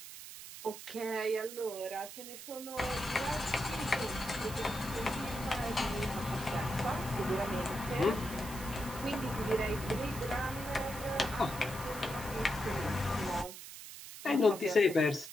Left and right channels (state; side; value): noise; right; hiss, 12 dB below the sound